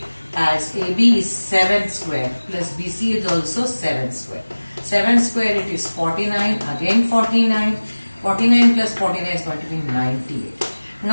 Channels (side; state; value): both; inverted; correlation -1.00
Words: as AB is 7 square plus BC is also 7 square. 7 square it is 49, again 49. 49 plus 49 is going to be 98.